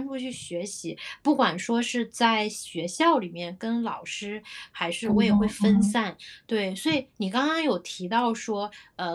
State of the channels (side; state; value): both; identical; correlation 1.00